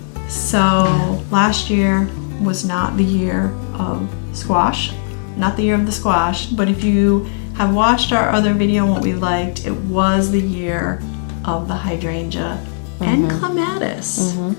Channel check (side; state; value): right; silent; digital silence